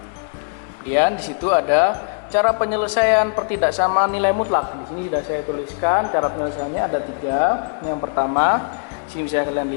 Kemudian di situ ada cara penyelesaian pertidaksamaan nilai mutlak. Di sini sudah saya tuliskan cara penyelesaiannya ada 3. Yang pertama, sini bisa kalian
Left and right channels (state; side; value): quieter; right; 39.1 dB